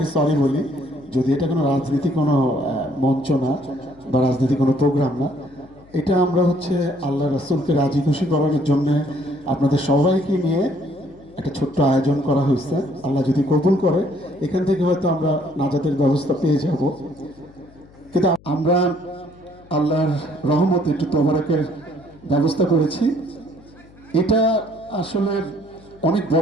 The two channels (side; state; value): left; noise; hum, 25 dB below the sound